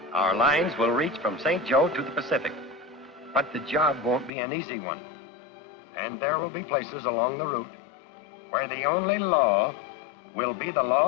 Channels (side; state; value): right; drops out; at 4.3 s